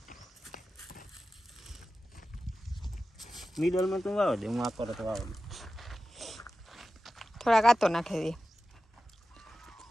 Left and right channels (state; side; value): normal; both; correlation 0.94